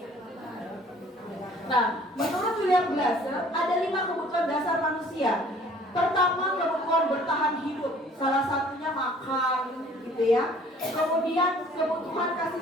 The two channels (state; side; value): normal; both; correlation 0.54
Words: Nah, menurut William Glasser ada 5 kebutuhan dasar manusia. Pertama, kebutuhan bertahan hidup, salah satunya makan, gitu ya. Kemudian kebutuhan